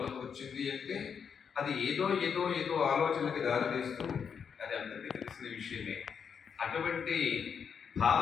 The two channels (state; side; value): quieter; right; 6.9 dB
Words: వచ్చింది అంటే అది ఏదో ఏదో ఏదో ఆలోచనకి దారితీస్తూ అది అందరికీ తెలిసిన విషయమే. అటువంటి